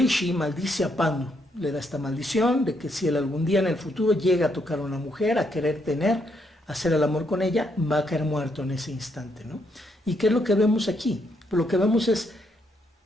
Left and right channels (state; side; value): normal; both; correlation 0.76